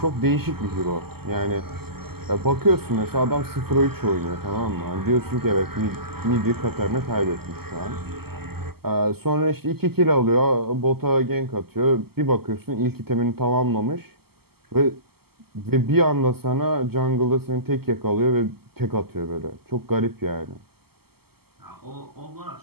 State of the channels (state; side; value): late; left; 0.96 ms